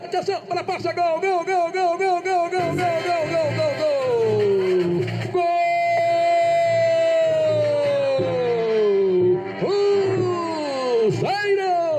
atenção, para passa, gol!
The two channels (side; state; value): both; identical; correlation 1.00